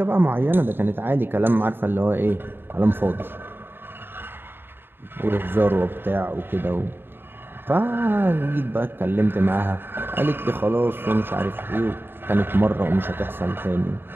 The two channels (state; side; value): late; left; 0.10 ms